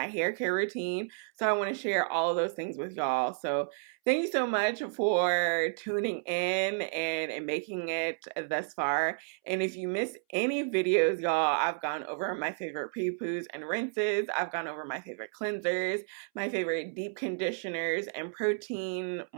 hair care routine. So I want to share all of those things with y'all. So thank you so much for tuning in and making it thus far. And if you miss any videos, y'all, I've gone over my favorite prepoos and rinses. I've gone over my favorite cleansers, my favorite deep conditioners and protein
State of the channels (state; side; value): silent; left; 57 dB below the other